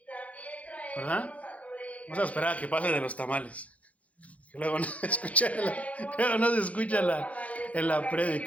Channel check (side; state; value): right; late; 0.067 ms